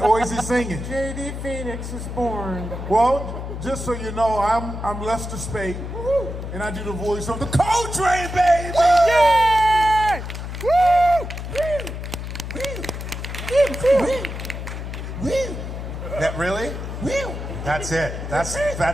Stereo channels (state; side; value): noise; left; hum, 7 dB below the sound